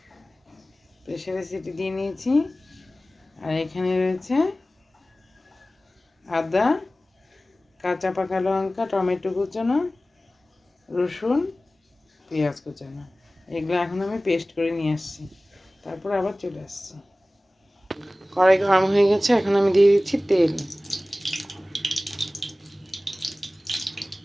প্রেসারে সিটি দিয়ে নিয়েছি। আর এখানে রয়েছে আদা, কাঁচা পাকা লঙ্কা, টমেটো কুচানো, রসুন, পেঁয়াজ কুচানো। এগুলো এখন আমি পেস্ট করে নিয়ে আসছি, তারপর আবার চলে আসছি। কড়াই গরম হয়ে গেছে, এখন আমি দিয়ে দিচ্ছি তেল।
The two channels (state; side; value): normal; both; correlation 0.97